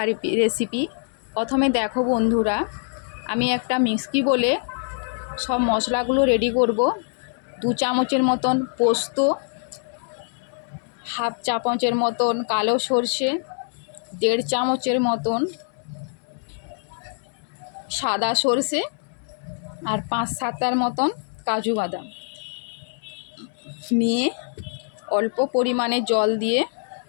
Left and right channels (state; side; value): silent; right; 62 dB below the other